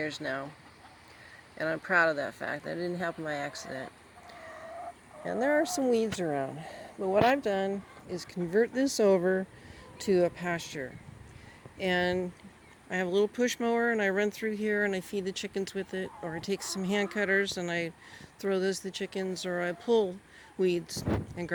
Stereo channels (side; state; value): both; identical; correlation 1.00